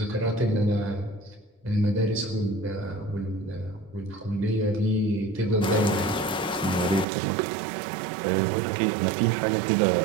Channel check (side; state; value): left; drops out; at 7.1 s